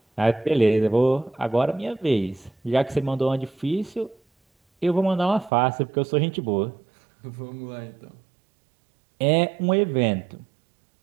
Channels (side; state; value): left; drops out; at 5.5 s